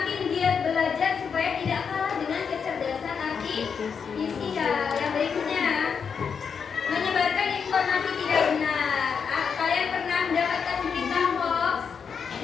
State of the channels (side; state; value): right; quieter; 6.4 dB